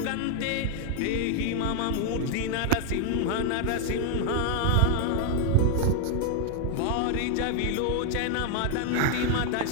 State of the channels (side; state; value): both; different; correlation 0.00